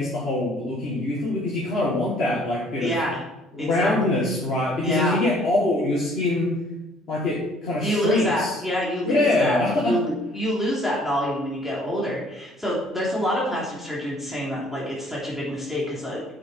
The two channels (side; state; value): both; normal; correlation 0.58